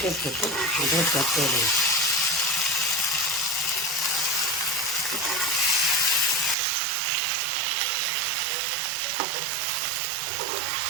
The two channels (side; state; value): left; drops out; at 6.6 s